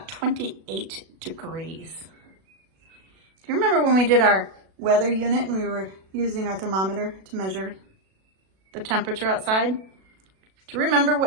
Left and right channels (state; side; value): late; left; 37 ms